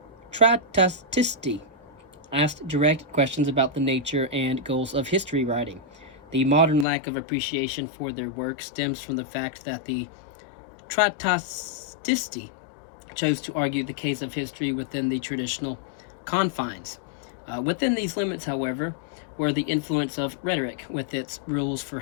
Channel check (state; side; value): drops out; right; at 6.9 s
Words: Trattatisti, asked direct questions about the nature and goals of history writing. The modern lack of appreciation for their work stems from the fact that the Trattatisti chose to argue the case of history within the traditional confines. Within these limits, however, where the influence of rhetoric, with its rules for